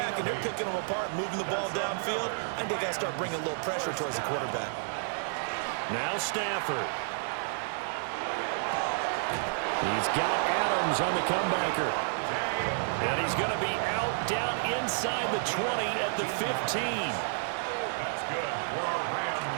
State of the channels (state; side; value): silent; left; digital silence